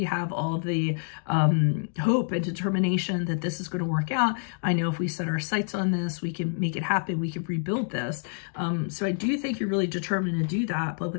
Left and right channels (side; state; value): right; silent; digital silence